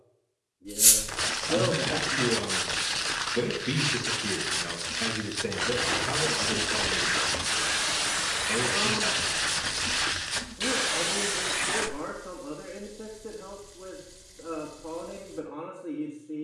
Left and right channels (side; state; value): both; identical; correlation 1.00